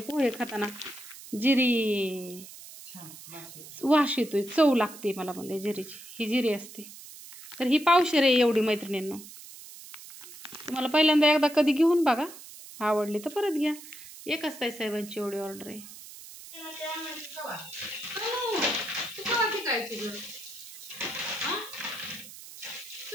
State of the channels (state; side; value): noise; right; hiss, 16 dB below the sound